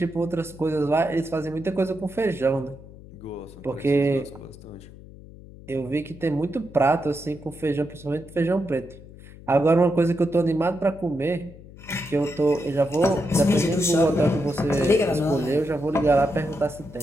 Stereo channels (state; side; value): noise; left; hum, 18 dB below the sound